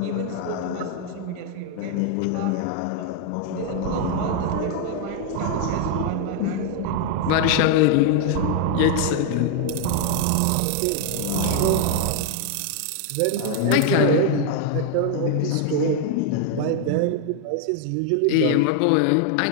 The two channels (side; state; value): both; different; correlation 0.00